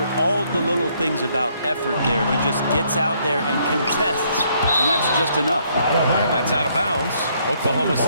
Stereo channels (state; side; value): inverted; both; correlation -0.69